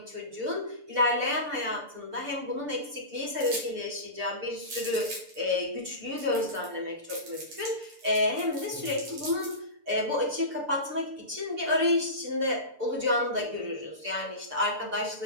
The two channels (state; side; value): late; left; 6.8 ms